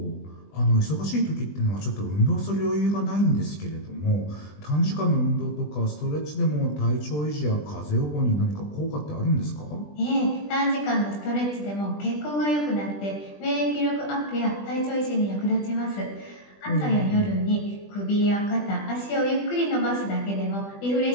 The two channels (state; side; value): late; right; 20 ms